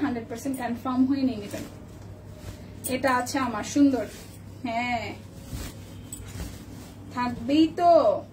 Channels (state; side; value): identical; both; correlation 1.00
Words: 100% কনফার্ম হয়ে নিয়ে নেবেন। এটা আছে আমার সুন্দর, হ্যাঁ থাকবেই তো,